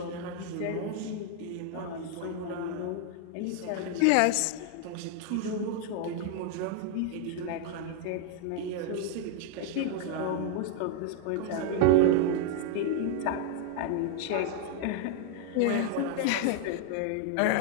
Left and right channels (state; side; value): different; both; correlation 0.00